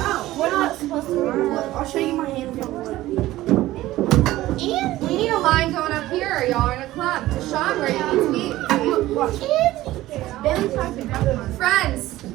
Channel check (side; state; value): left; quieter; 16.2 dB